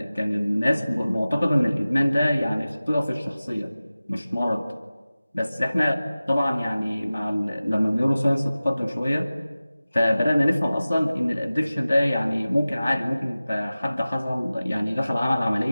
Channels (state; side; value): inverted; both; correlation -0.97